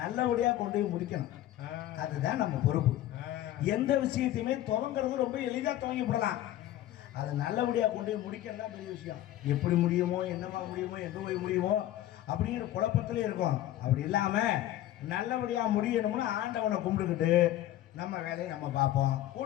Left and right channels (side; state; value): right; quieter; 13.5 dB